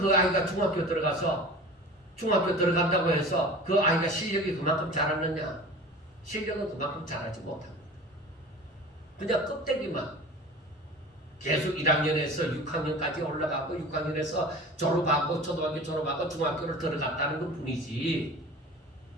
아이가 중학교 들어간다고 해서 그 아이가 실력이 그만큼 잘하느냐? 실력은 그만큼 잘하지 못합니다. 그냥 껍데기만 계속 1학년에서 6학년까지 올라가고 6학년에서 졸업하고 초등학교 졸업하고 중학교를 들어갔다는 것 뿐이지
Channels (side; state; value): both; normal; correlation 0.38